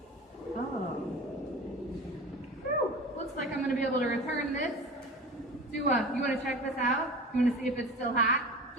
Oh. Whew. Looks like I'm going to be able to return this. You want to check this out? You want to see if it's still hot?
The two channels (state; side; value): normal; both; correlation 0.35